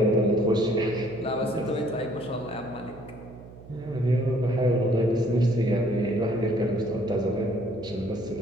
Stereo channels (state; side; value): noise; right; hum, 18 dB below the sound